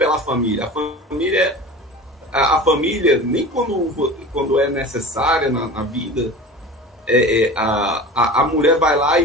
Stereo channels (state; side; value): normal; both; correlation 0.35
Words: família. A família, nem quando é necessária na vida, a mulher vai lá e